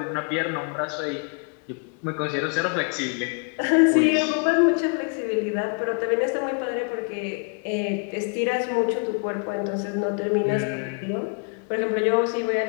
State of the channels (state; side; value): quieter; right; 37.7 dB